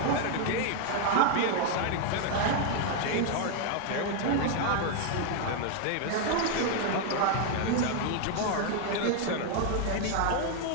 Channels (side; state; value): both; different; correlation 0.00